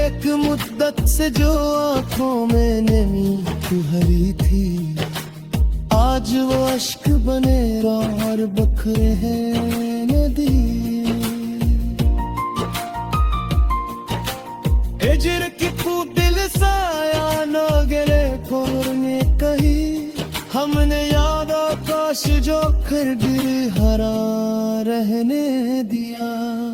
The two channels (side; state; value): both; identical; correlation 1.00